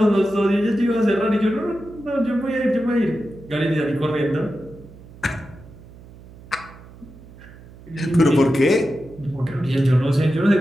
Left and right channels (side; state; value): right; noise; hum, 20 dB below the sound